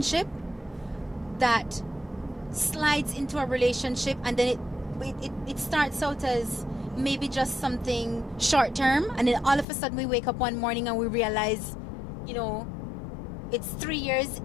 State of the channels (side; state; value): right; drops out; at 9.7 s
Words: that slides into a relationship, and then it starts out as maybe just something short term, and then all of a sudden we wake up one morning and we realize, you know, it's 3 years